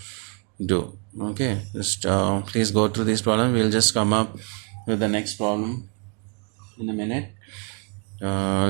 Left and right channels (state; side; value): quieter; left; 37.5 dB